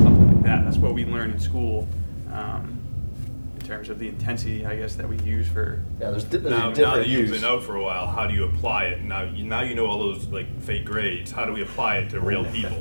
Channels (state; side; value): inverted; both; correlation -1.00